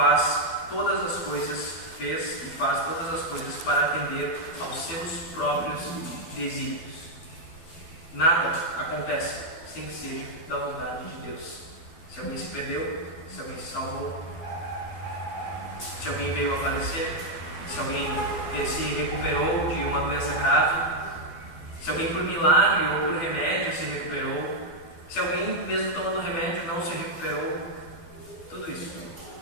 todas as coisas, fez e faz todas as coisas para atender aos seus próprios desígnios. Nada acontece sem que seja da vontade de Deus. Se alguém se perdeu, se alguém se salvou, se alguém veio a falecer, se alguém se recuperou de uma doença grave, se alguém por milagre ou por remédio se recuperou, se alguém mesmo tomando remédio não se recuperou, tudo isso,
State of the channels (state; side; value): late; right; 12 ms